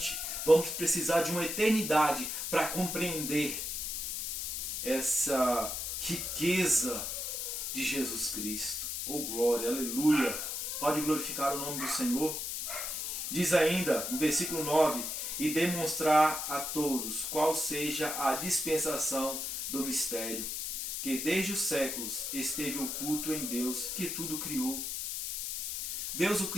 Vamos precisar de uma eternidade para compreender essa riqueza de Jesus Cristo. Oh glória, aleluia! Pode glorificar o nome do Senhor. Diz ainda no versículo 9: e demonstrar a todos qual seja a dispensação do mistério, que desde os séculos esteve oculto em Deus, que tudo criou. Deus, o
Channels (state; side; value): noise; left; hiss, 3 dB below the sound